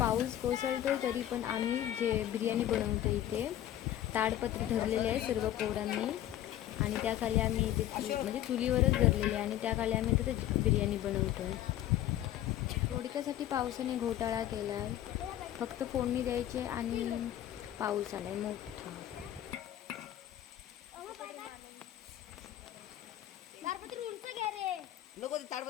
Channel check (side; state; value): right; quieter; 12.5 dB